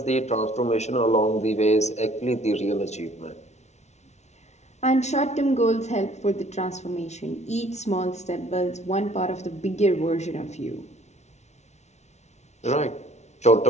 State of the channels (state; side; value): late; right; 0.32 ms